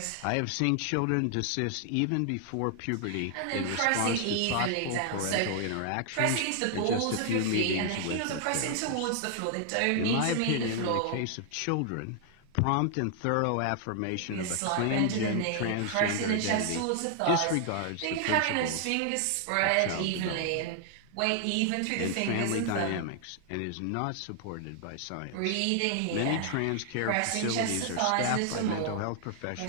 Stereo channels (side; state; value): both; different; correlation 0.00